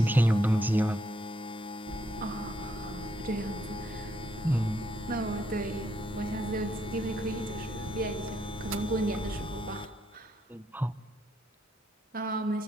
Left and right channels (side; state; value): both; normal; correlation 0.75